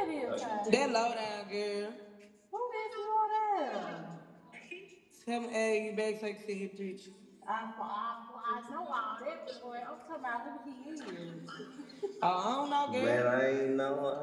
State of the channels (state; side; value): identical; both; correlation 1.00